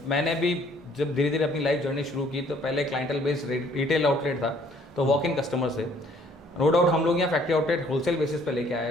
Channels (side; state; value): both; normal; correlation 0.60